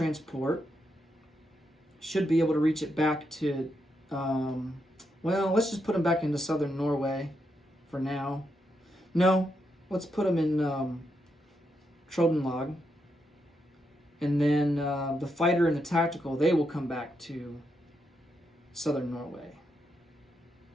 should be able to reach it back to, well, let's just put them back into southern Norway for now. No, let's put them in Trøndelag. And then the fighter and the tactical, they will come back to southern Norway.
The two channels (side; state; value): both; normal; correlation 0.82